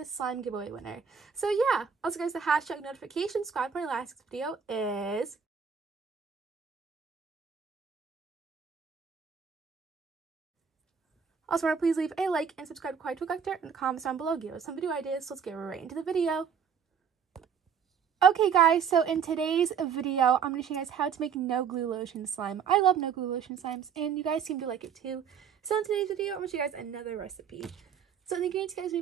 slime giveaway winner. So yeah, also guys, the hashtag notification squad for my last video is... Also, remember, please leave a like and subscribe to Kawaii Toy Collector in the comments down below. Give us some video ideas, so let's get right into the video. Okay guys, so in today's video, I'm going to show you guys how to make no glue lotion slime. I love no glue lotion slimes, and you guys seem to like it too. So in today's video, I'm going to show you guys another recipe. So the ingredients you guys need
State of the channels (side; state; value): left; quieter; 7.0 dB